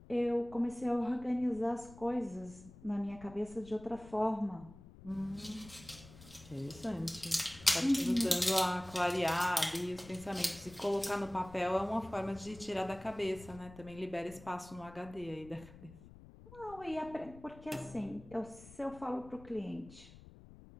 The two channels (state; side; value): noise; left; rumble, 19 dB below the sound